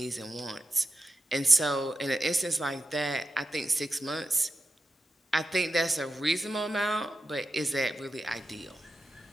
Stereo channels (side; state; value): both; normal; correlation 0.91